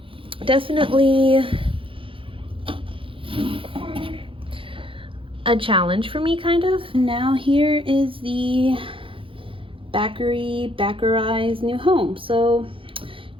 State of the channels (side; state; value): left; late; 0.25 ms